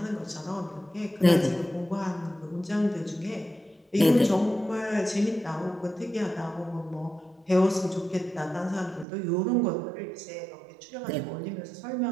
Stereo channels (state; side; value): drops out; left; at 9.1 s